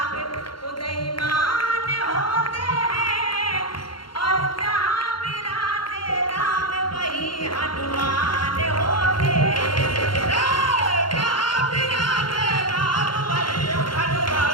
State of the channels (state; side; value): late; right; 0.72 ms